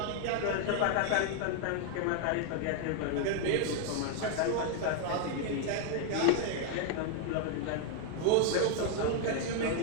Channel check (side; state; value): both; different; correlation 0.00